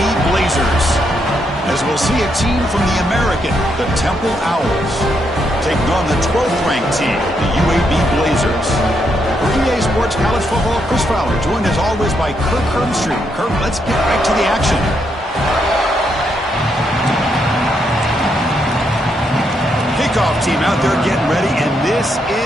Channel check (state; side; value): normal; both; correlation 0.78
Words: Blazers. As we'll see a team from the American, the Temple Owls, taking on the 12th-ranked team, the UAB Blazers. For EA Sports College Football, Chris Fowler, joined as always by Kirk Hermstreet. Kirk, let's get right to the action. Kickoff team out there getting ready, and this